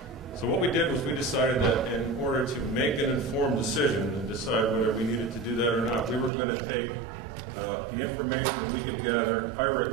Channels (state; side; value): drops out; left; at 6.3 s